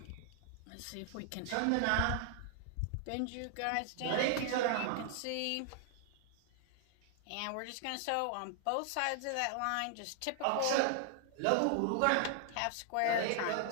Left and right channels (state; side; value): different; both; correlation 0.00